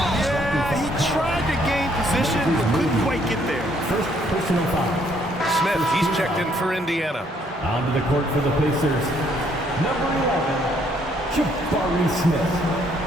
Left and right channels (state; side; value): normal; both; correlation 0.67